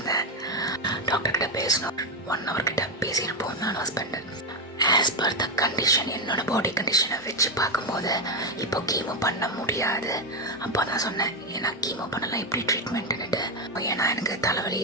டாக்டர்கிட்ட பேசணும். 1 hour கிட்ட பேசியிருப்போம் நான் husband. As per the condition, என்னோட பாடி கண்டிஷனை வச்சு பார்க்கும்போது இப்போ கீமோ பண்ண முடியாது. அப்போ தான் சொன்னேன், ஏன்னா கீமோ பண்ணலாம் எப்படி ட்ரீட்மெண்ட்டுன்னுட்டு. ஏன்னா எனக்கு தலைவலி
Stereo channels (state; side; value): normal; both; correlation 0.07